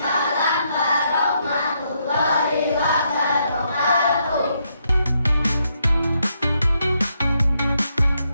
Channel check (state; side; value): inverted; both; correlation -0.77